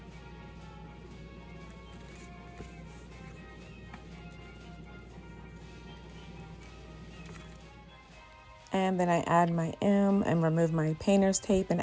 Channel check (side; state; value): both; identical; correlation 1.00